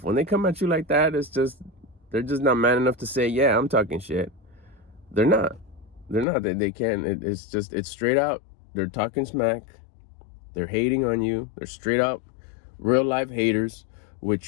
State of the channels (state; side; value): drops out; right; at 6.2 s